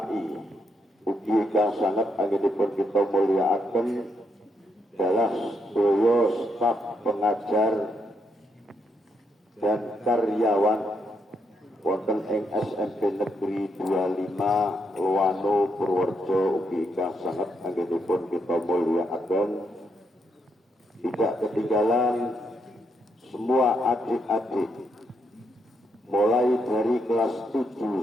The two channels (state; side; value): normal; both; correlation 0.78